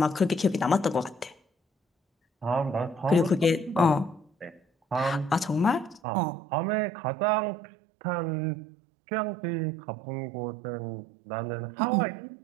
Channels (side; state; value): left; drops out; at 6.0 s